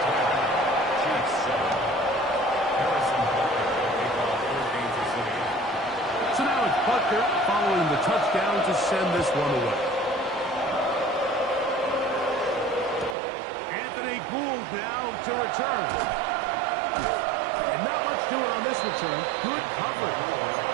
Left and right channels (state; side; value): drops out; left; at 13.2 s